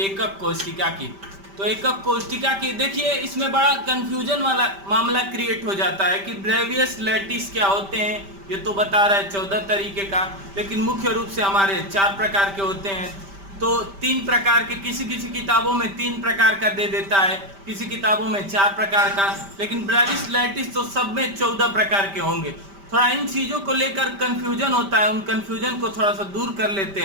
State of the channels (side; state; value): left; late; 5.1 ms